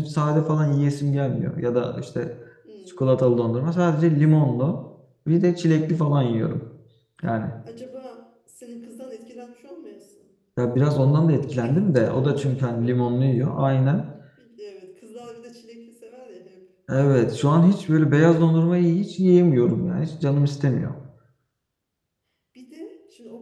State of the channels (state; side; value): identical; both; correlation 1.00